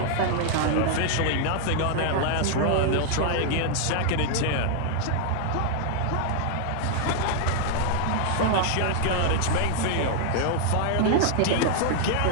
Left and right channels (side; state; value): both; different; correlation 0.00